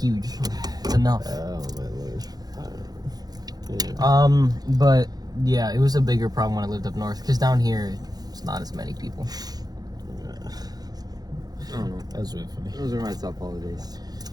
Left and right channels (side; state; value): left; late; 0.19 ms